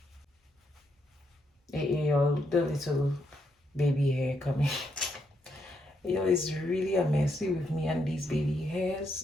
Yo, the little baby hair coming. Yo, it's really a messy with me and these baby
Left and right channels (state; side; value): normal; both; correlation 0.78